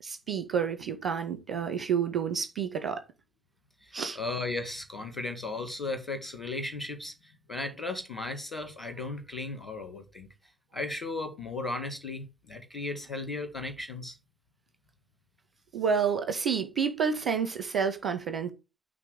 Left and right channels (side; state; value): left; quieter; 3.5 dB